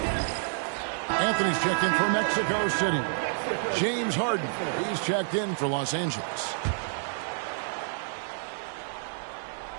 Anthony's checked in for Mexico City. James Harden, he's checked in for Los Angeles.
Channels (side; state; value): left; silent; 59 dB below the other